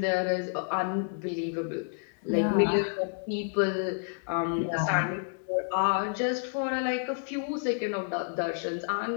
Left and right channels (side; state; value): right; silent; digital silence